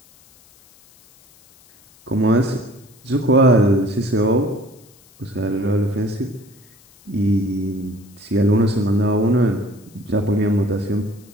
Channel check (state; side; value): noise; left; hiss, 28 dB below the sound